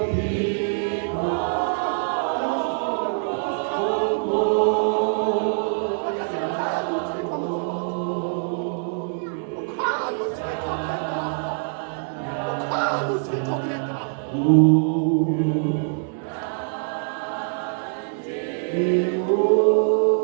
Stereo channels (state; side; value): silent; left; 62 dB below the other